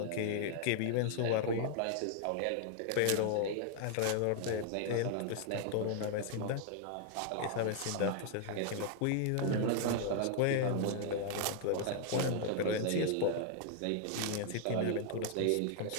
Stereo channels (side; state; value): both; different; correlation 0.00